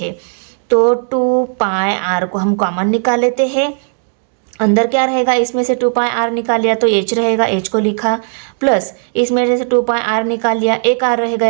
तो 2 पाई आर को हम कॉमन निकाल लेते हैं। अंदर क्या रहेगा, इसमें से 2 पाई आर निकाल लिया तो h रहेगा, h को लिखा, प्लस इसमें से 2 पाई आर निकाल लिया, एक आर रह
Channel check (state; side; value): silent; left; 70 dB below the other